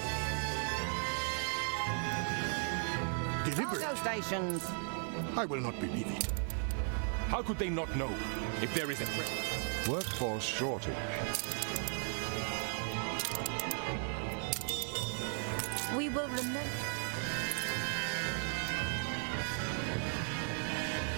deliberate. Cargo stations. I will not believe it. How could they not know if there is a threat? Workforce shortage. We will remember.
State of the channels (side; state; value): left; silent; 53 dB below the other